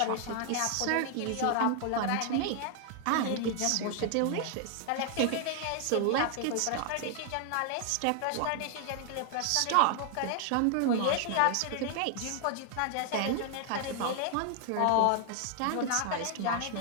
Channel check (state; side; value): different; both; correlation 0.00